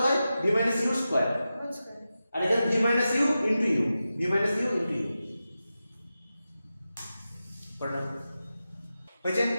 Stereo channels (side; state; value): both; inverted; correlation -0.92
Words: হয় v মাইনাস ইউ স্কয়ার বুঝছেন আর এখানে v minus U into U v minus U into U পড়লাম হয়েছে